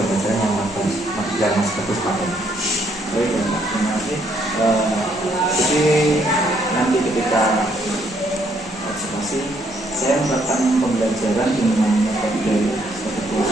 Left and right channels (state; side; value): normal; both; correlation 0.70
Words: yang Mas Bagus pakai? Baik ya Pak, terima kasih. Jadi nanti ketika observasi, saya melakukan pembelajaran dengan metode